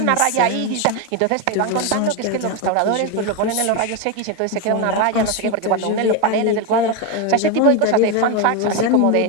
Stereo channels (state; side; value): different; both; correlation 0.02